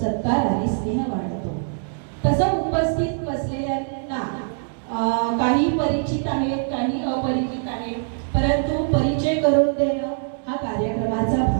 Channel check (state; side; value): silent; left; 63 dB below the other